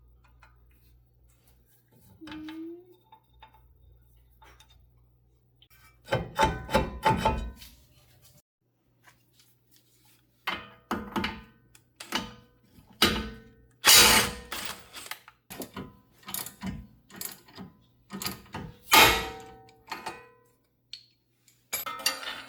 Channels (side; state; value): both; identical; correlation 1.00